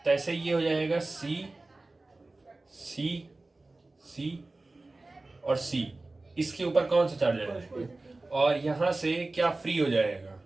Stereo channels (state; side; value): quieter; left; 3.1 dB